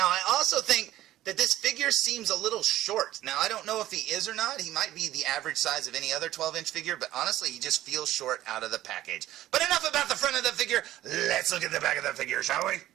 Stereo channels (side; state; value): left; quieter; 14.3 dB